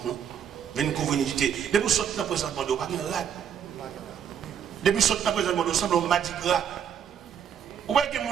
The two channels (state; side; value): quieter; left; 8.4 dB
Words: non? Viens couvrir nudité. Mais pour sortir dans la présence de Dieu, il n'y a pas de rad. Depuis ce temps présent, nous sommes au Mardi Gras. Vous voyez que